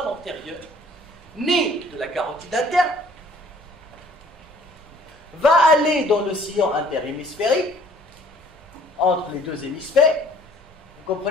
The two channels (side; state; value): both; normal; correlation 0.56